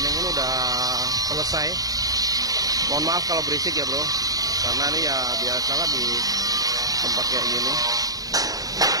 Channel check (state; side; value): late; left; 0.18 ms